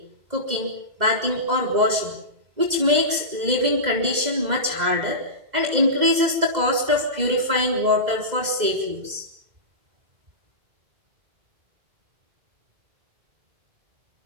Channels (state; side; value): late; left; 2.0 ms